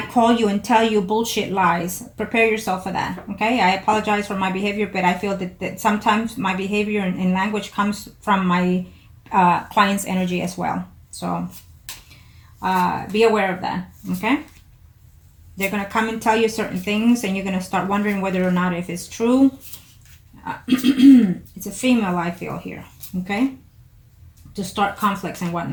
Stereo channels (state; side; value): identical; both; correlation 1.00